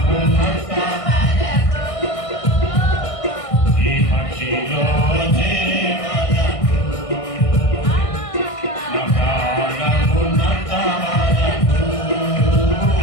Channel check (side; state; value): right; late; 1.6 ms